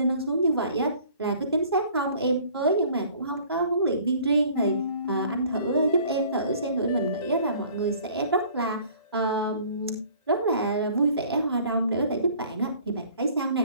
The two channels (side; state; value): both; inverted; correlation -0.53